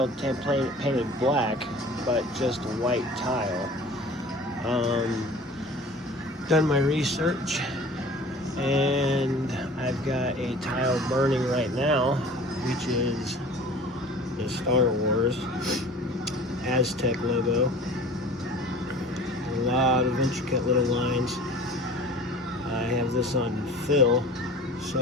painted black, but just white tile. Done my research, and I've got a tile burning right now, which is the Star Wars Aztec logo. A lot of intricate little lines. I have this on fill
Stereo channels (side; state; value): both; normal; correlation 0.44